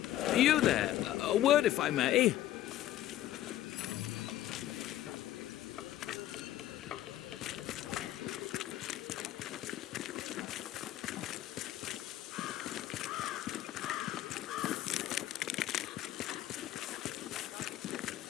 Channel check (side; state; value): right; quieter; 13.4 dB